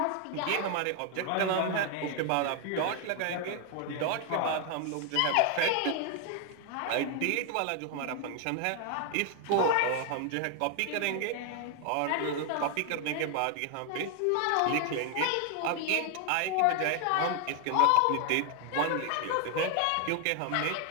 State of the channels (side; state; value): both; different; correlation 0.00